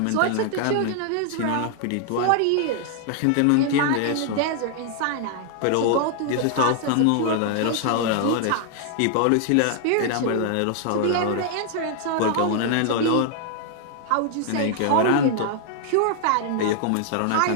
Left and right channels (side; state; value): both; different; correlation 0.00